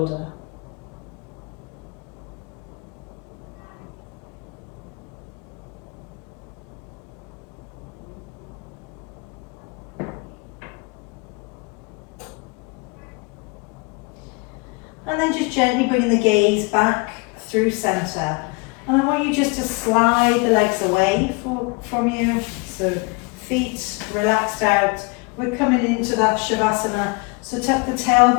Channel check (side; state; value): right; quieter; 29.8 dB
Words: And then just gently bring the gaze back through center. And I want you just to slide the legs away from you. So feet relaxed out. We're coming into that Shavasana. So tuck the